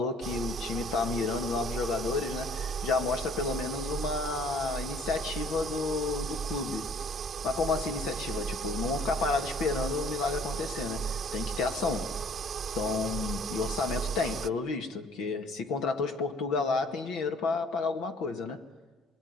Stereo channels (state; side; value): normal; both; correlation 0.56